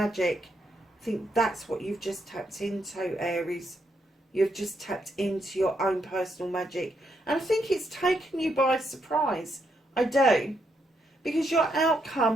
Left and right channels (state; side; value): normal; both; correlation 0.78